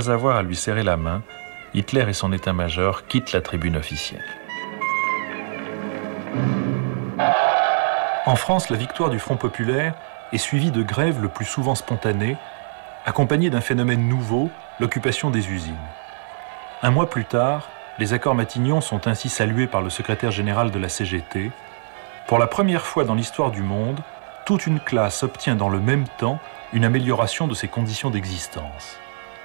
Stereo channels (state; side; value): silent; left; 59 dB below the other